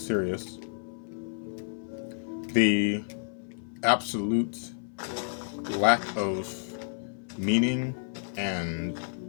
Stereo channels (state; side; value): silent; right; 58 dB below the other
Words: The absolute lack of meaning and